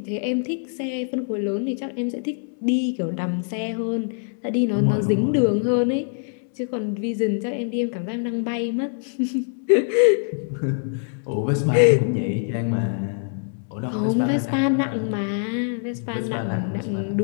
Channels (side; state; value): right; silent; 63 dB below the other